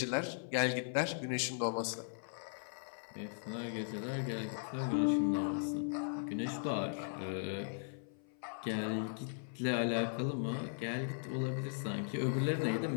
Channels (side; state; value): right; silent; 52 dB below the other